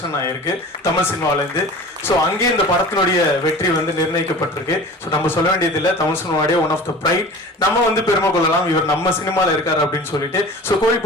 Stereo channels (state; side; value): normal; both; correlation 0.39